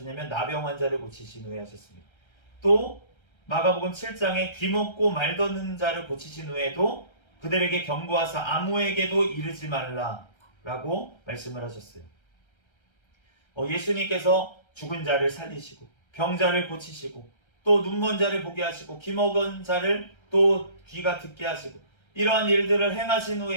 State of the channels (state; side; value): late; right; 1.3 ms